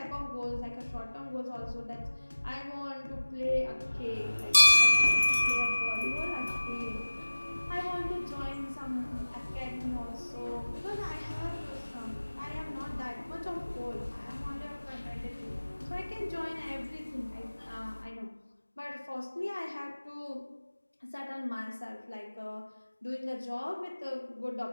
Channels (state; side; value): inverted; both; correlation -1.00